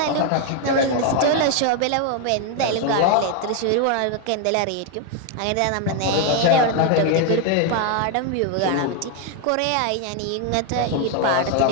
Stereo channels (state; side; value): different; both; correlation 0.01